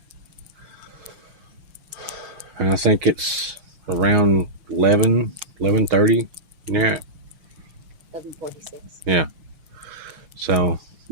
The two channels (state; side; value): late; left; 6.8 ms